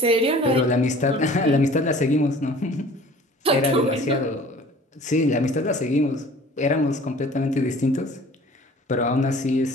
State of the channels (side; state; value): both; normal; correlation 0.47